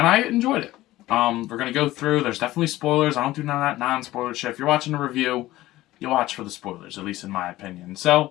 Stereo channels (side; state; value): right; quieter; 16.6 dB